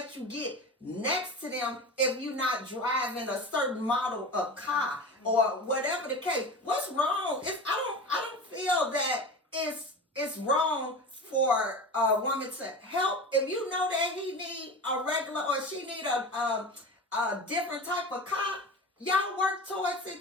you get next to them if you're not driving a certain model of car or whatever the case. What's wrong? I don't feel that it's wrong for a woman to help. If you know that he need a regular or she need a different type of car, y'all work towards it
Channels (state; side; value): normal; both; correlation 0.31